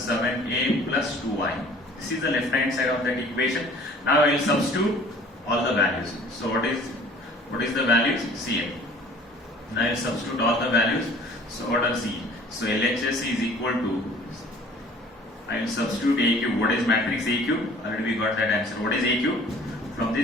7A plus 2Y. This is the left hand side of that equation. Now I will substitute all the values. So what is the values? Cn. Now I will substitute all the values. So what are C? So LHS is equal to, I will substitute A cube. What is matrix A cube? Already we got that answer. What is A cube? From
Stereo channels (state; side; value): normal; both; correlation 0.50